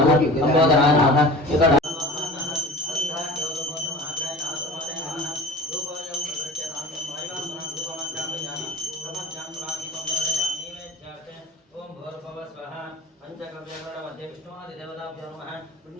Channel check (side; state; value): both; normal; correlation 0.39